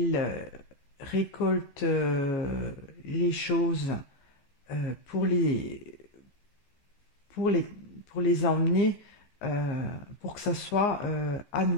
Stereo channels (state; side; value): late; right; 15 ms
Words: récolte les choses pour les emmener pour que ça soit à